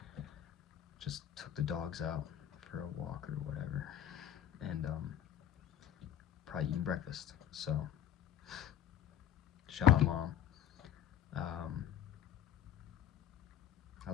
just took the dogs out for a walk or whatever, and probably eating breakfast. So shout out, Mom. um, I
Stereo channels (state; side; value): quieter; right; 10.3 dB